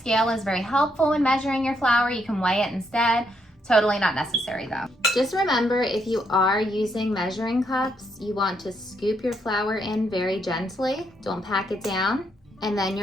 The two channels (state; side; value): normal; both; correlation 0.76